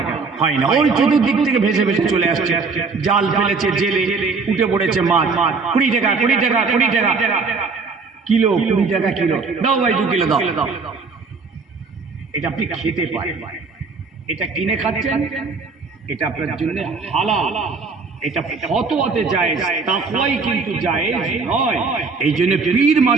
হয় না। ওই চতুর্দিক থেকে ভেসে ভেসে চলে আসছে, জাল ফেলেছে, জেলে উঠে পড়েছে মাছ, 20 টাকা 20 টাকা 20 টাকা কিলো, 20 টাকা কিলো, দাও ভাই 2 কিলো দাও। এটা আপনি খেতে পারেন, এটা কিনে খাচ্ছেন, এটা আপনার জন্য হালাল, এটা ফতোয়াতে জায়েজ, তাকওয়াই কিন্তু জায়েজ নয়। এই জন্য পীর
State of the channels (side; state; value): left; quieter; 4.6 dB